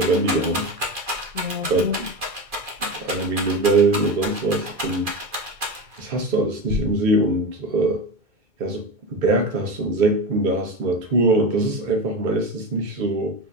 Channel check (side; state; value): left; late; 2.4 ms